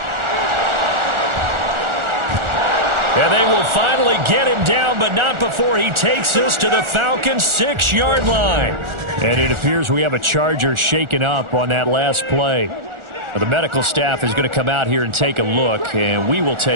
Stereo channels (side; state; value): left; late; 1.4 ms